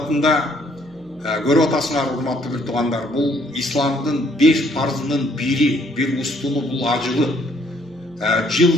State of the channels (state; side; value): noise; right; hum, 27 dB below the sound